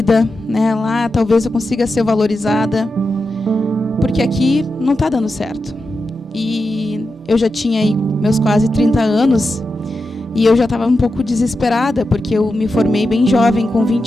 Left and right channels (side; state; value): both; normal; correlation 0.89